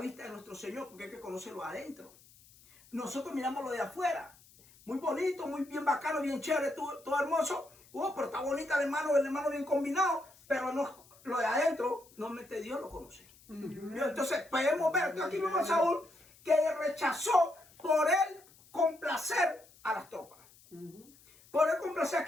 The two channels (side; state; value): left; noise; hiss, 26 dB below the sound